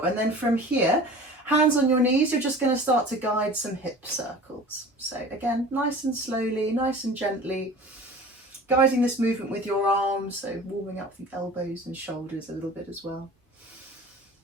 And then from here, hands on your knees, you're just going to start to guide some hip circles. So again, nice and slowly, nice and gently. Guiding this movement with your arms, so warming up the elbows and shoulders a little bit as well.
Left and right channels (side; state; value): both; normal; correlation 0.41